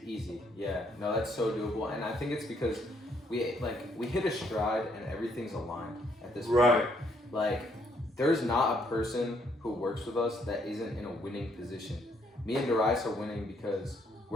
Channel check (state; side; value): normal; both; correlation 0.70